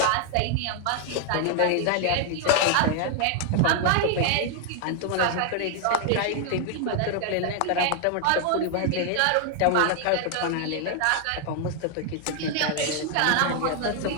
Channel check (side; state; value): both; different; correlation 0.00